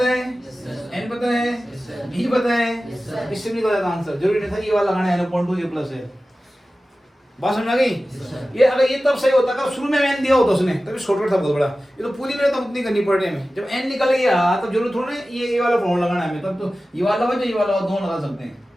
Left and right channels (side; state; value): both; normal; correlation 0.95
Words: है, n पता है, b पता है, इससे भी निकल जाता आंसर, जरूरी नहीं था ये वाला लगाना है n/2 a प्लस है, बात समझ आ गई। ये अगर ये तब सही होता अगर शुरू में n दिया होता उसने तभी शॉर्टकट था बहुत बड़ा, ये तो पूरी मेहनत उतनी करनी पड़ रही है हमें। जब n निकल गया तब जरूर थोड़ा ना ये वाला फॉर्मूला लगाना है हमें, तब तो ये वाला हो ये वाला दोनों लगा सकते हैं,